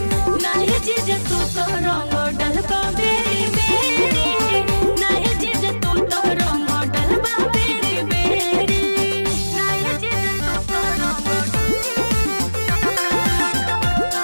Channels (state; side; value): inverted; both; correlation -1.00